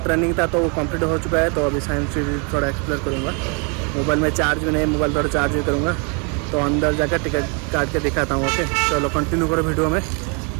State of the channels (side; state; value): left; quieter; 35.5 dB